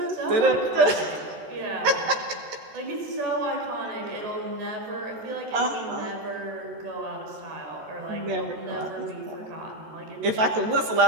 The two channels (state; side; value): late; left; 14 ms